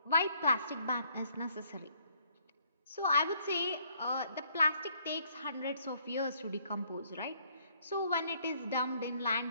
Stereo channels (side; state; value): both; inverted; correlation -0.65